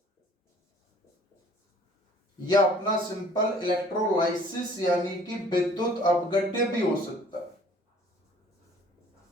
या अपना सिंपल इलेक्ट्रोलाइसिस यानी कि विद्युत अपघट्य भी हो सकता है।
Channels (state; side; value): normal; both; correlation 0.55